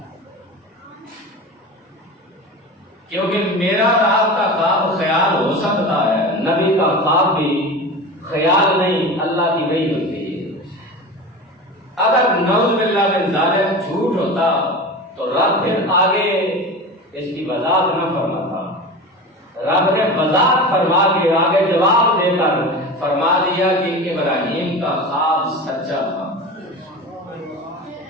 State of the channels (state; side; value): normal; both; correlation 0.30